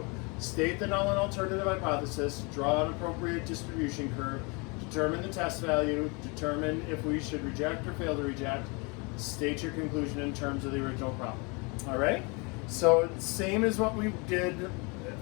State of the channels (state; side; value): quieter; right; 30.1 dB